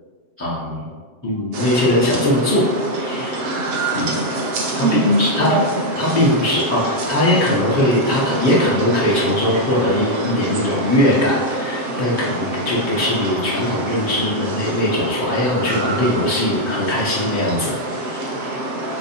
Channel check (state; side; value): late; left; 7.6 ms